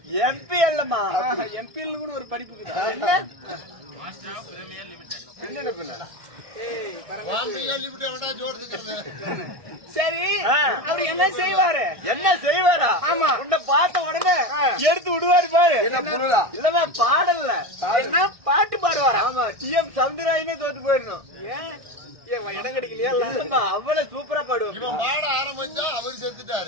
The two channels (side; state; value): left; late; 1.6 ms